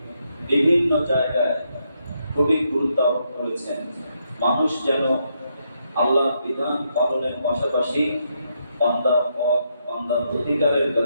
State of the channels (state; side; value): inverted; both; correlation -0.78